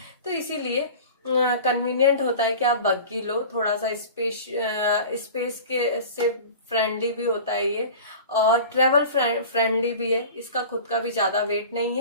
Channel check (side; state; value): both; inverted; correlation -0.37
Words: तो इसीलिए कन्वीनियंट होता है कि आप बग्गी लो। थोड़ा सा स्पेस के से फ्रेंडली भी होता है ये, और ट्रेवल फ्रेंडली भी है। इसका खुद का भी ज़्यादा वेट नहीं